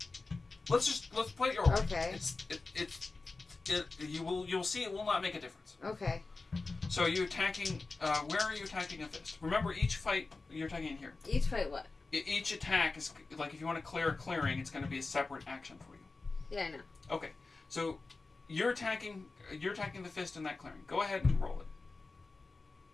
Let's play your role. Okay. You'll see it will not make a difference. Okay. So are you attacking? Where are you attacking a fist? Remember, each fight you're attacking in here. Each fight what? Each attack is like if you want to clear a clearing, it's going to be a separate action for you. Yeah, I know. Okay, so you're attacking the fist in that clearing. Go ahead and roll it.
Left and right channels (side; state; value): right; quieter; 3.7 dB